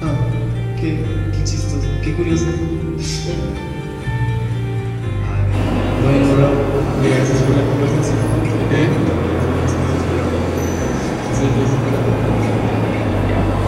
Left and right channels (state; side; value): identical; both; correlation 1.00